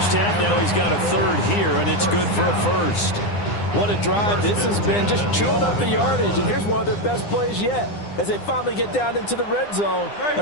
half. Now he's got a third here, and it's good for a first. What a drive this has been, just chewing up the yardage. And here's one of their best plays yet, as they finally get down into the red zone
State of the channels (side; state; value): right; late; 9.8 ms